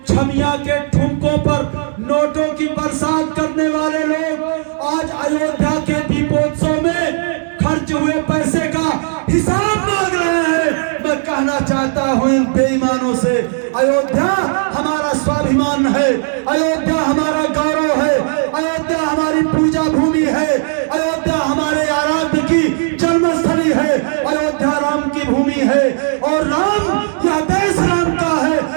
छमिया के ठुमकों पर नोटों की बरसात करने वाले लोग आज अयोध्या के दीपोत्सव में खर्च हुए पैसे का हिसाब मांग रहे हैं। मैं कहना चाहता हूं इन बेईमानों से, अयोध्या हमारा स्वाभिमान है, अयोध्या हमारा गौरव है, अयोध्या हमारी पूजा भूमि है, अयोध्या हमारे आराध्य की जन्मस्थली है, अयोध्या राम की भूमि है। और राम, यह देश राम का है,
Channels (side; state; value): left; silent; digital silence